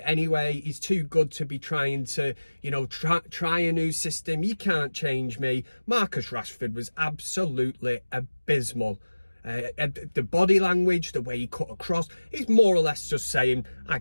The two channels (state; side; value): inverted; both; correlation -1.00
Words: anyway. He's too good to be trying to, try a new system. You can't change me. Marcus Rashford was absolutely abysmal. The body language, the way he cut across, he's more or less just saying, I